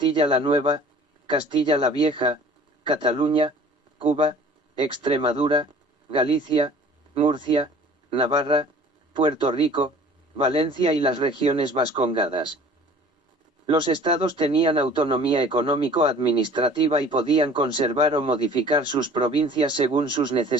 la Nueva, Castilla la Vieja, Cataluña, Cuba, Extremadura, Galicia, Murcia, Navarra, Puerto Rico, Valencia y las regiones vascongadas. Los estados tenían autonomía económico-administrativa y podían conservar o modificar sus provincias según sus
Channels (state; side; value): normal; both; correlation 0.48